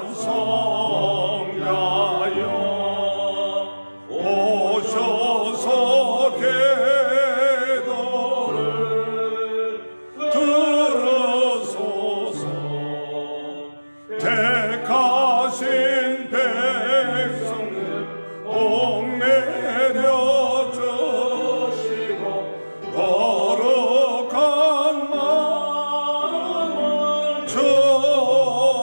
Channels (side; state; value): both; inverted; correlation -1.00